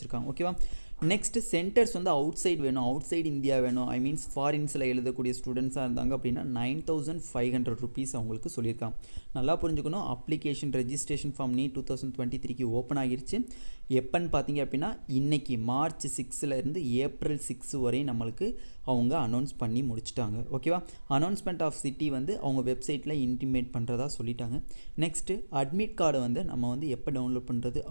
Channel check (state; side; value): inverted; both; correlation -1.00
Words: ஓகேவா? நெக்ஸ்ட்டு சென்டர்ஸ் வந்து அவுட் சைடு வேணும், அவுட் சைடு இந்தியா வேணும், ஃபாரின்ஸில் எழுதக்கூடிய ஸ்டூடெண்ட்ஸாக இருந்தாங்க அப்படின்னா 9500 ருபீஸ் அவங்களுக்கு சொல்லியிருக்காங்க. நல்லா புரிஞ்சுக்கணும். அப்ளிகேஷன் ரெஜிஸ்ட்ரேஷன் ஃபார்ம் நீட் 2023க்கு ஓப்பன் ஆகிருச்சு. எப்போன்னு பார்த்தீங்க அப்படின்னா, இன்றைக்கி மார்ச் 6லேருந்து ஏப்ரல் 6 வரை நம்மளுக்கு அவங்க அனௌன்ஸ் பண்ணி முடிச்சிட்டாங்க. ஓகேவா? அனௌன்ஸ்மெண்ட் ஆஃப் சிட்டி வந்து அவங்க வெப்சைட்டில் இன்டிமேட் பண்ணுறதா சொல்லிட்டாங்க. நெக்ஸ்ட்டு அட்மிட் கார்டு வந்து நம்ம வந்து எப்போ டவுன்லோட் பண்ணுறது